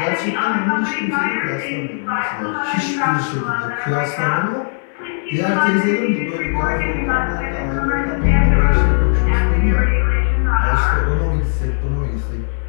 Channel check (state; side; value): silent; right; digital silence